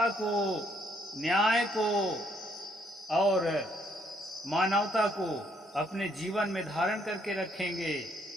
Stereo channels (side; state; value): both; normal; correlation 0.69